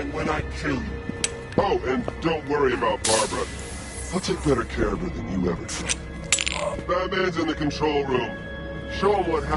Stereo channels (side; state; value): both; identical; correlation 1.00